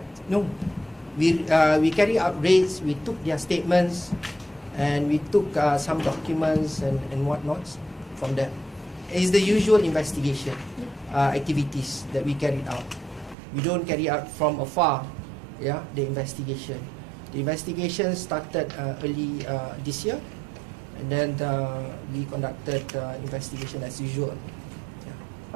No. We carry out raids, we took their statements, and we took some documents and whatnots from them. It's the usual investigation activities that we carried out. We don't carry out from afar, the investigation. The investigation started early this year, and then we conducted investigation as usual.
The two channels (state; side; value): drops out; left; at 13.4 s